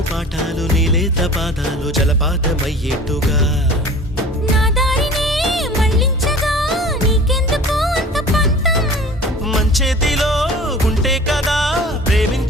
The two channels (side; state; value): both; normal; correlation 0.43